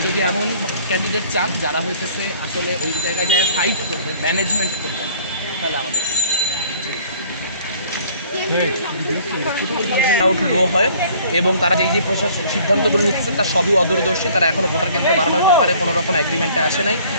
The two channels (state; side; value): inverted; both; correlation -0.55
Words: যদি এমন ক্যান্ডিডেট চান যারা হইতেছে আসলে ওই জায়গায় যায় ফাইট করবে, ম্যানেজমেন্ট করবে, তাহলে আমাদের আউট লো হয় এবং তারা যে প্রশাসন সিদ্ধান্তগুলো নিচ্ছে তার সবই অদূরদর্শী। তারা এখনও ভোটার কেন্দ্র বাড়ানোর ব্যাপারে কোনো রকম এগ্রিমেন্টে আসে নাই।